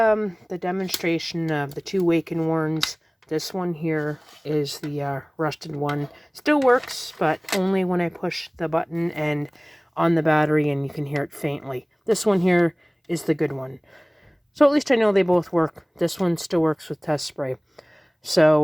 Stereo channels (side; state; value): both; identical; correlation 1.00